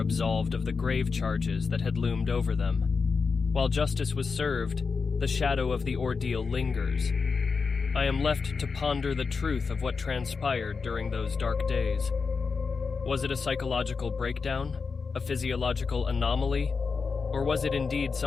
of the grave charges that had loomed over them. While justice was served, the shadow of the ordeal lingers. I am left to ponder the truth of what transpired during those dark days. Was it a psychological breakdown, a physiological anomaly, or was it indeed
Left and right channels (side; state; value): right; quieter; 5.0 dB